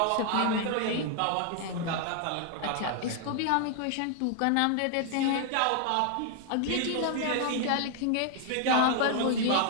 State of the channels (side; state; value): both; different; correlation 0.00